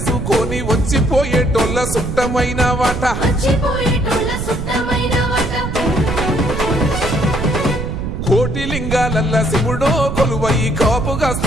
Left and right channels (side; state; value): right; noise; rumble, 4 dB below the sound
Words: వచ్చిపోయేటోళ్ళ సుట్టమైన వాట కోటి లింగాలల్ల శివుడో కొలువై